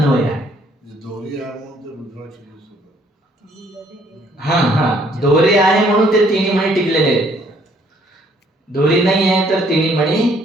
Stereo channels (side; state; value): both; normal; correlation 0.64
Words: आहे. दोरी आहे म्हणून ते रुद्राक्ष दिसत आहे. दोरी आहे म्हणून ते 3 मणी टिकलेले आहेत. दोरी नाही आहे तर 3 मणी